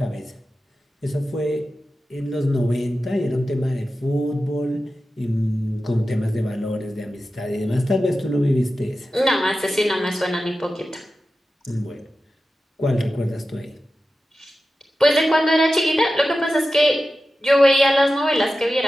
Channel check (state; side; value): normal; both; correlation 0.93